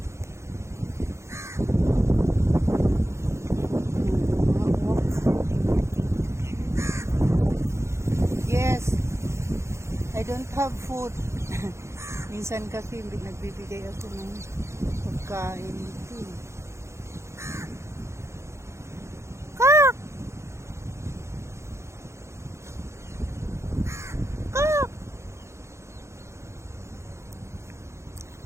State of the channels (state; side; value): late; left; 0.13 ms